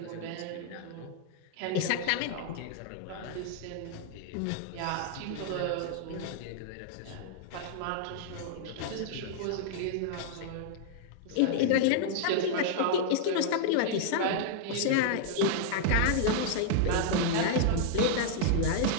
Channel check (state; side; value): different; both; correlation -0.01